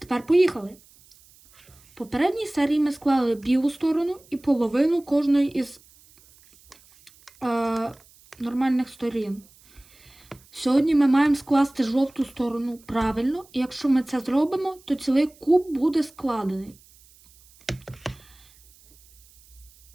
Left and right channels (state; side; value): noise; right; hiss, 27 dB below the sound